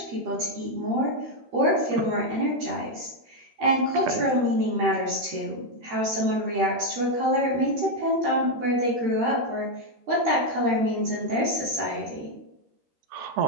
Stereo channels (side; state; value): left; late; 13 ms